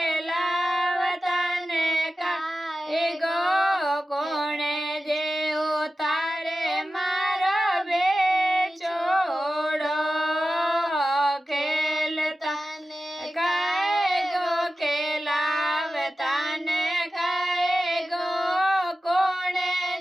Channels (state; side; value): normal; both; correlation 0.94